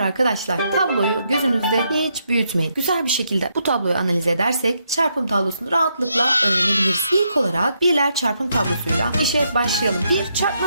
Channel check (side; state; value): both; inverted; correlation -0.78